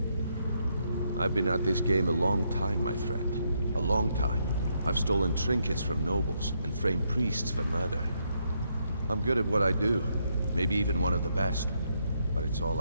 I've been at this game a long time, my friend. A long time. I've stolen trinkets from nobles and framed priests for murder. I'm good at what I do, maybe even one of the best, but it's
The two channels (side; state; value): both; inverted; correlation -0.77